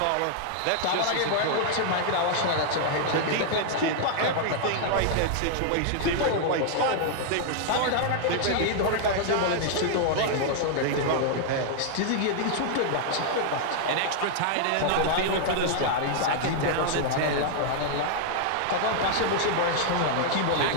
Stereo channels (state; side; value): different; both; correlation -0.01